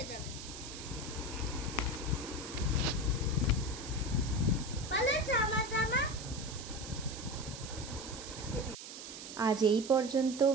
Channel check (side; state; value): right; noise; hiss, 11 dB below the sound